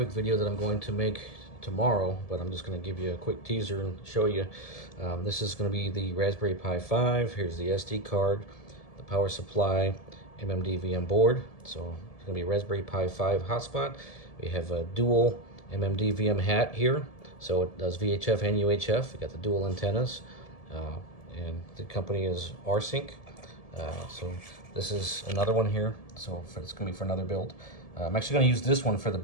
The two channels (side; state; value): right; late; 1.7 ms